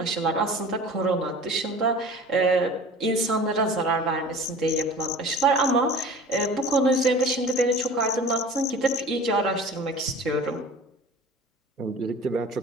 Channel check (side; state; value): both; normal; correlation 0.41